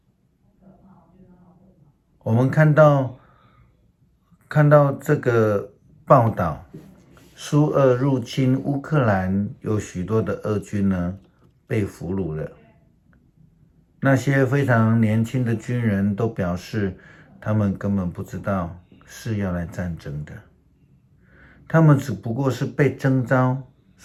我们看到这个报道，苏俄入侵乌克兰，有许多的俄军呢被俘虏了。那些非常年轻的军人都表示，他们根本不知道是要来战争的，他们只不过是被征召，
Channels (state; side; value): identical; both; correlation 1.00